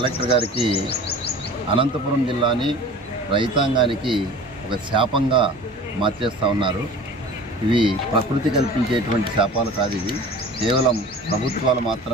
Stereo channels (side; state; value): both; normal; correlation 0.41